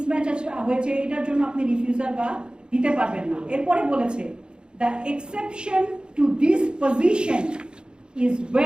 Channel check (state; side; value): late; left; 0.050 ms